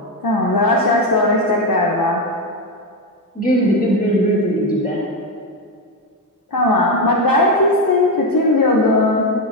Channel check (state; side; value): normal; both; correlation 0.10